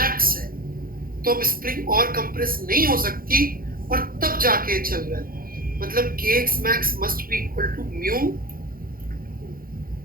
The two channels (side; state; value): left; late; 0.42 ms